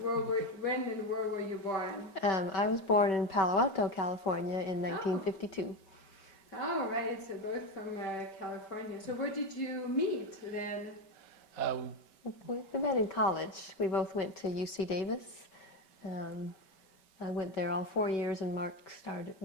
when and where were you born? I was born in Palo Alto, California in 1952. Oh, right, so both from California. So where did you meet then? We met in college. We both went to UC Davis. I went there all 4 years, and Mark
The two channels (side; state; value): right; late; 5.2 ms